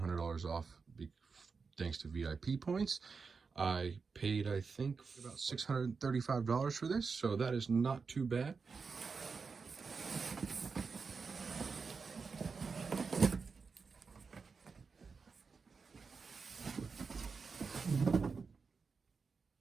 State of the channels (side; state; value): left; quieter; 5.0 dB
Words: off thanks to VIP points, I paid, I think, about $635 for this, so that is not too bad.